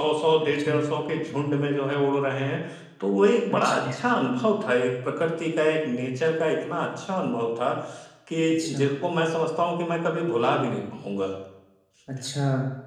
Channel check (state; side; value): identical; both; correlation 1.00